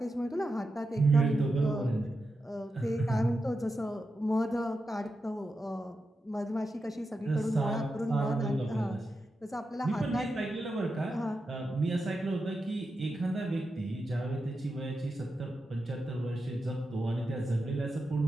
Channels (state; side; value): normal; both; correlation 0.89